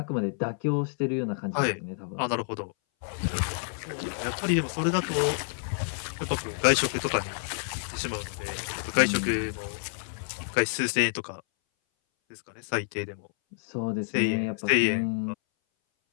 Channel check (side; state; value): right; silent; 59 dB below the other